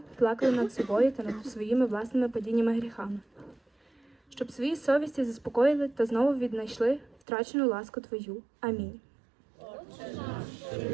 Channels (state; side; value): drops out; left; at 7.2 s